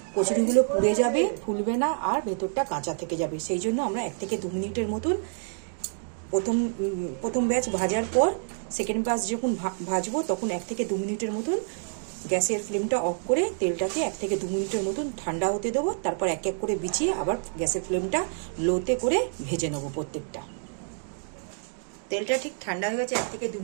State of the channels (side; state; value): left; silent; digital silence